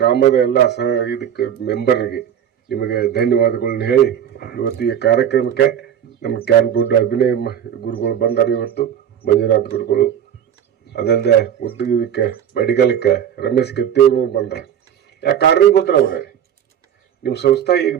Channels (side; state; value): left; quieter; 9.3 dB